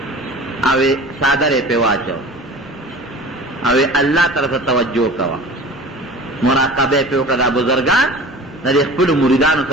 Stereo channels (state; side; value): normal; both; correlation 0.39